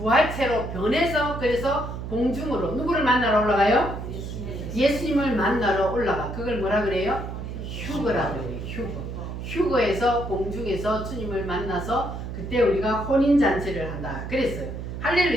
변해서 그래서 공중으로 누구를 만나러 올라가요? 예수님을 만나러 올라가. 그걸 뭐라 그래요? 휴거라 그래요. 휴거. 휴거에서 공중에서 주님을 만나서 그때 우리가 혼인잔치를 한다 그랬어요.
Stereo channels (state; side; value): noise; right; hum, 7 dB below the sound